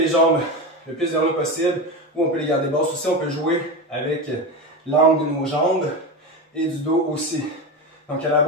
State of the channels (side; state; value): both; normal; correlation 0.20